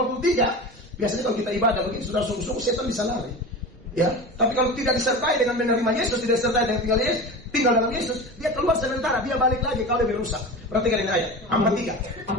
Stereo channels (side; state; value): both; normal; correlation 0.30